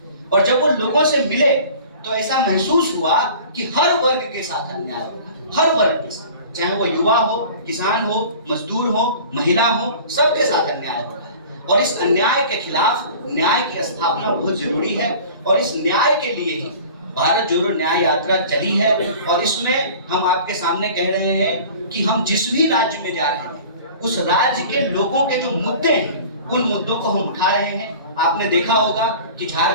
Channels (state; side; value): inverted; both; correlation -0.43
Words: और जब वो लोगों से मिले तो ऐसा महसूस हुआ कि हर वर्ग के साथ अन्याय हो रहा है, हर वर्ग के साथ, चाहे वो युवा हो, किसान हो, मजदूर हो, महिला हो, सबके साथ अन्याय हो रहा है। और इस अन्याय के खिलाफ न्याय की स्थापना बहुत जरूरी है, और इस न्याय के लिए ही भारत जोड़ो न्याय यात्रा चली है। और इसमें हम आपके सामने कह रहे हैं कि हम जिस भी राज्य में जा रहे हैं उस राज्य के लोगों के जो मुद्दे हैं उन मुद्दों को हम उठा रहे हैं। आपने देखा होगा कि